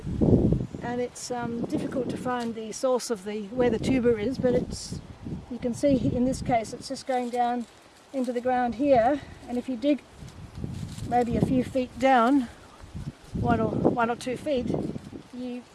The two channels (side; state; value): both; identical; correlation 1.00